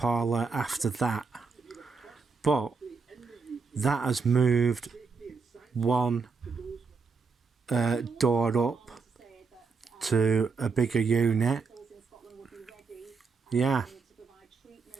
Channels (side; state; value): left; quieter; 4.8 dB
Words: after that, but that has moved one door up to a bigger unit. Yeah.